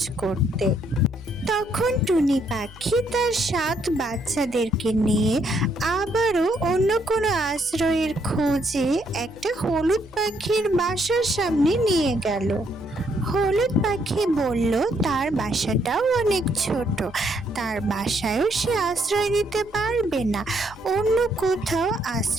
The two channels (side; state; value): right; noise; hum, 27 dB below the sound